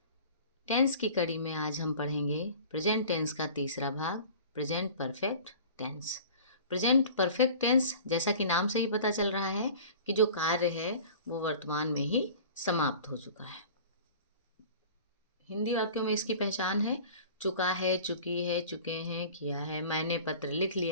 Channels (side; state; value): both; inverted; correlation -0.42